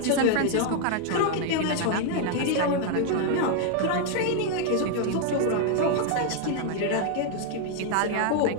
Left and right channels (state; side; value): different; both; correlation 0.00